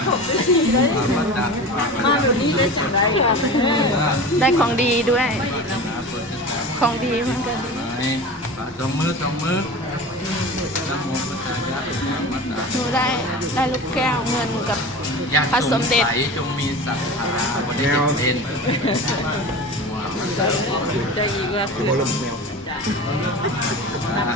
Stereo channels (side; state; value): both; normal; correlation 0.33